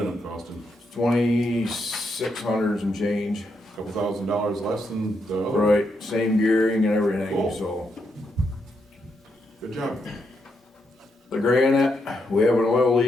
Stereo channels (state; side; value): normal; both; correlation 0.80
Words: up costing? 2,600 and change. Couple $1,000 less than the other? Right, same gearing and everything, Cool. so. Good job. The granite, we have an oil